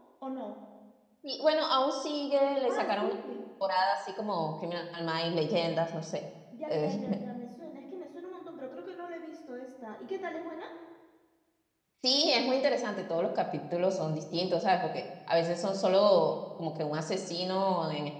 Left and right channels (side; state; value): both; identical; correlation 1.00